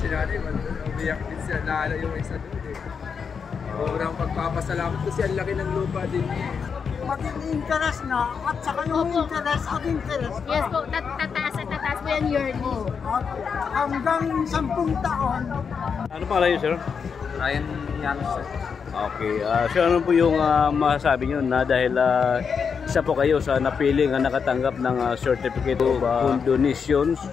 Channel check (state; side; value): quieter; right; 6.2 dB